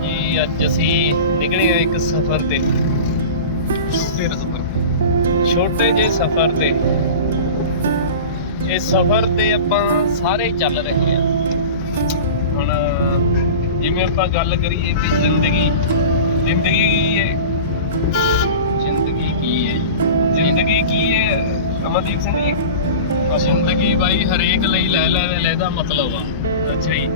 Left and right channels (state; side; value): inverted; both; correlation -0.32